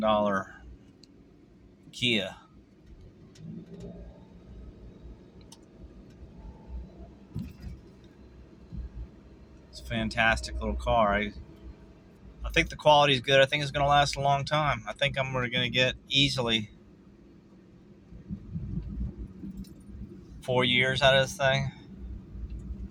Kia. It's a fantastic little car. I think the quality is good. I think it's going to last a long time. I think I'm going to get easily 4 years out of this thing.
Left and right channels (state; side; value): identical; both; correlation 1.00